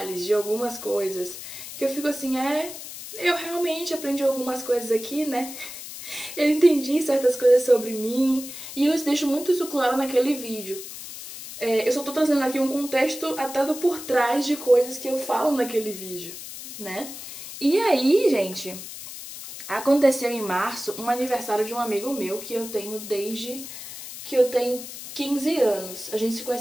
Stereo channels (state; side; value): noise; left; hiss, 11 dB below the sound